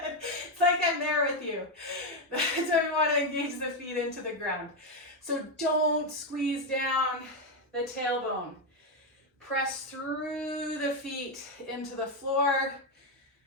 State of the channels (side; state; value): both; normal; correlation 0.06